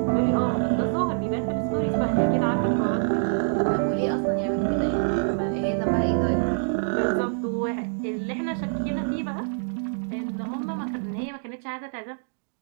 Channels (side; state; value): left; silent; digital silence